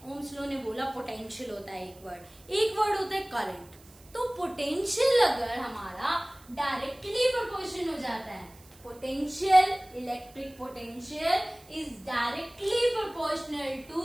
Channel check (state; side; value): noise; right; hiss, 25 dB below the sound